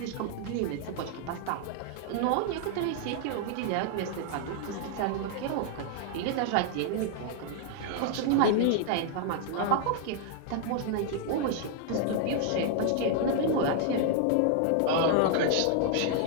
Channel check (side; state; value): both; different; correlation 0.00